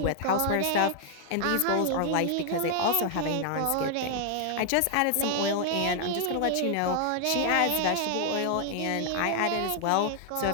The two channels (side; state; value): both; different; correlation 0.00